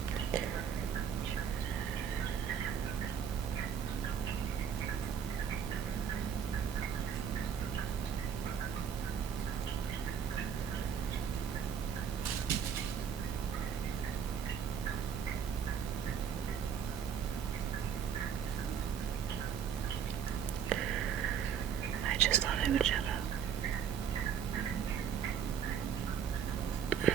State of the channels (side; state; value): left; quieter; 7.8 dB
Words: I just thought I would shut up.